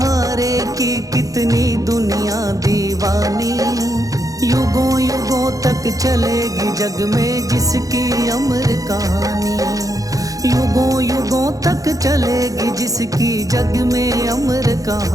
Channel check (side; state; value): left; late; 0.17 ms